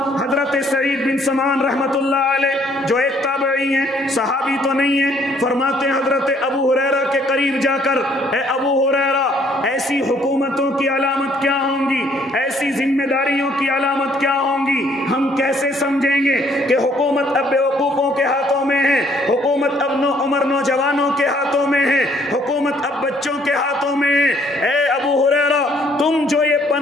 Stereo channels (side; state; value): both; normal; correlation 0.64